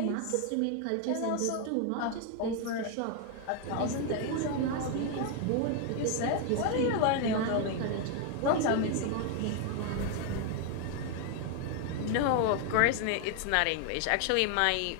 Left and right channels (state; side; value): different; both; correlation 0.00